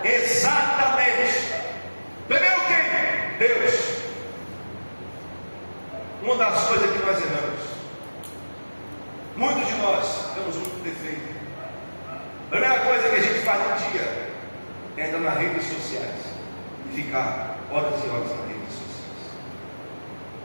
Exatamente. Primeiro quem? Deus. Uma das coisas que nós erramos, muitos de nós temos muito defeito. A primeira coisa que a gente faz no dia é entrar nas redes sociais e ficar horas e horas nas redes sociais.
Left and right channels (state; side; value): inverted; both; correlation -1.00